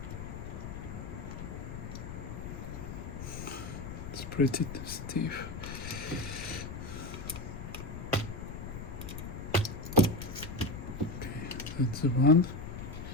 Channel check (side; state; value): left; noise; rumble, 7 dB below the sound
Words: It's pretty stiff. That's the one.